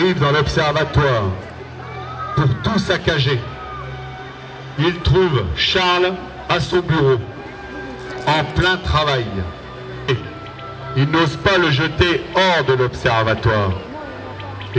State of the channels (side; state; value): both; identical; correlation 1.00